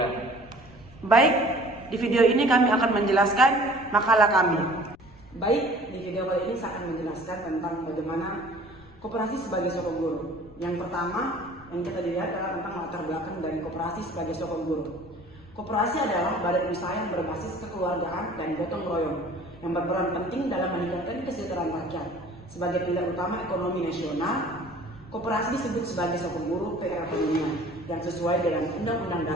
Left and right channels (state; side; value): noise; left; rumble, 24 dB below the sound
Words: Baik, di video ini kami akan menjelaskan makalah kami. Baik, di video kali ini saya akan menjelaskan tentang bagaimana koperasi sebagai soko guru. Yang pertama yang kita dilihat adalah tentang latar belakang dari koperasi sebagai soko guru. Koperasi adalah badan usaha yang berbasis kekeluargaan dan gotong royong yang berperan penting dalam meningkatkan kesejahteraan rakyat. Sebagai pilar utama ekonomi nasional, koperasi disebut sebagai soko guru perekonomian yang sesuai dengan Undang-Undang